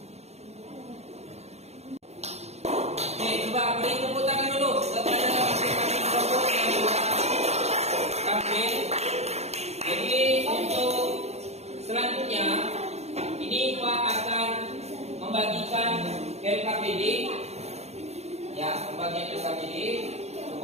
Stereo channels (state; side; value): late; left; 0.31 ms